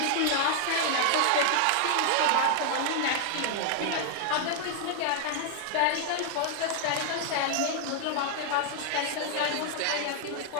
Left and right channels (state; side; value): different; both; correlation 0.00